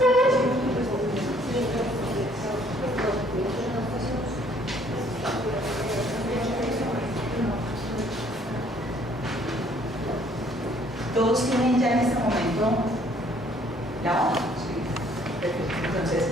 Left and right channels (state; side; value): normal; both; correlation 0.62